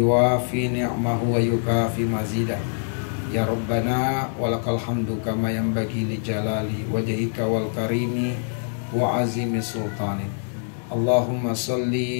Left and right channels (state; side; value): silent; right; digital silence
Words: ni'mahu wa yukafi mazidah. Ya Rabbana walakal hamdu kama yanbaghi li jalali wajhika wal karimi wa azimi sultani. Allahumma